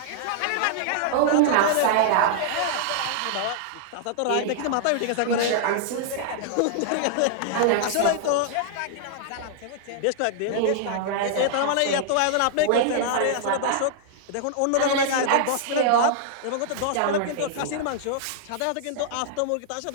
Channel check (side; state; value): both; different; correlation -0.01